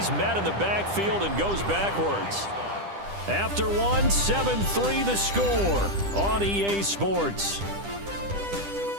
met in the backfield and goes backwards. After 1, 7-3 the score on EA Sports.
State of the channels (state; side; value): late; left; 10 ms